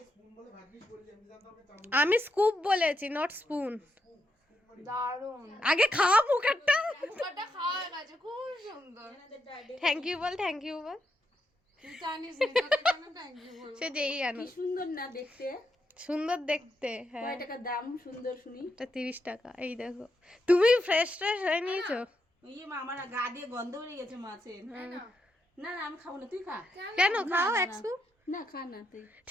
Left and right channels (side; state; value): both; normal; correlation 0.82